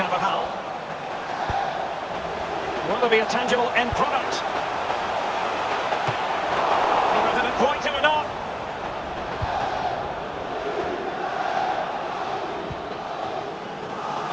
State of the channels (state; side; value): identical; both; correlation 1.00